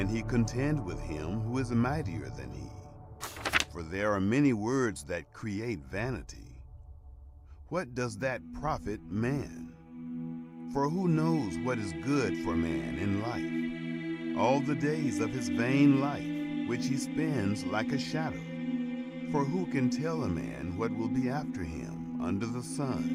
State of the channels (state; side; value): identical; both; correlation 1.00